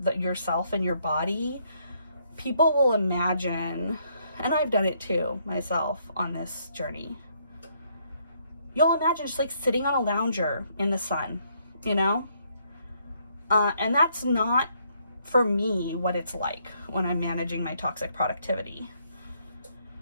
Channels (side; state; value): both; inverted; correlation -0.71